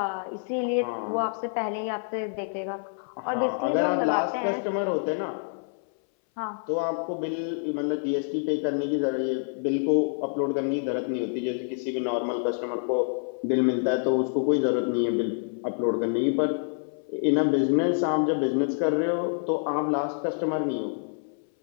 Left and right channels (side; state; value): right; silent; 60 dB below the other